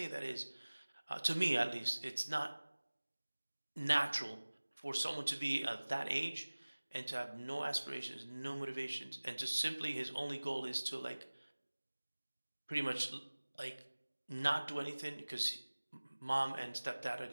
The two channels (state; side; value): inverted; both; correlation -1.00